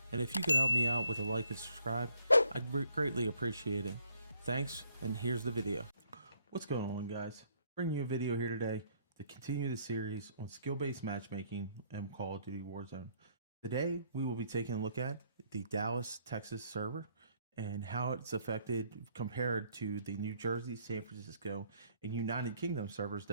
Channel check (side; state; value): both; inverted; correlation -0.67